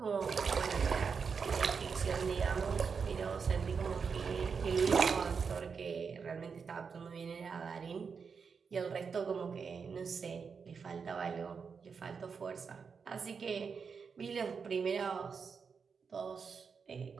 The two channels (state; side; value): quieter; left; 5.8 dB